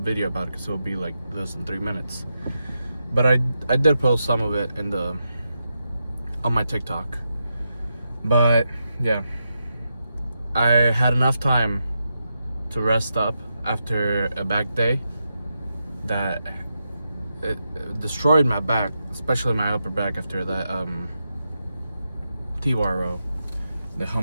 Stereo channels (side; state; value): both; inverted; correlation -0.86